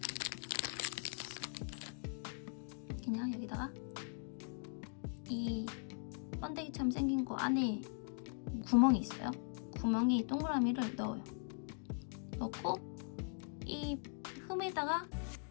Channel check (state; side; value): silent; right; 51 dB below the other